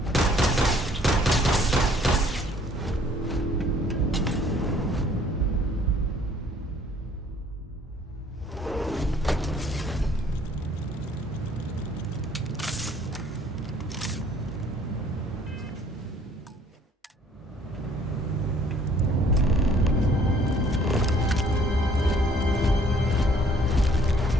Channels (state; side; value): normal; both; correlation 0.59